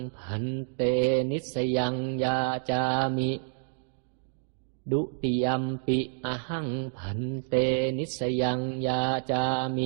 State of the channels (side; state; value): left; silent; 59 dB below the other